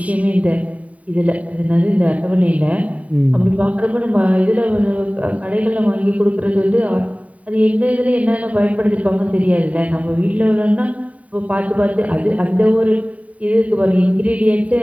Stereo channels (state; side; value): late; left; 0.068 ms